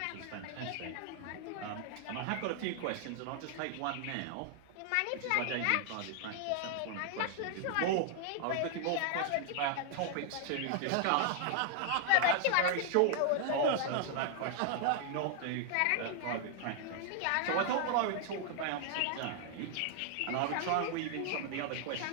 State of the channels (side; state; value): both; different; correlation 0.00